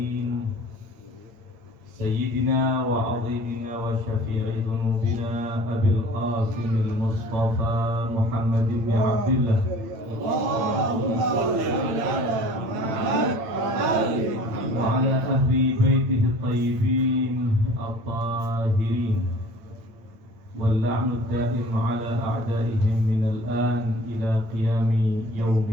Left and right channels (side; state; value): left; late; 8.9 ms